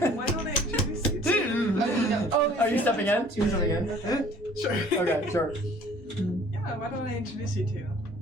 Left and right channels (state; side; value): normal; both; correlation 0.53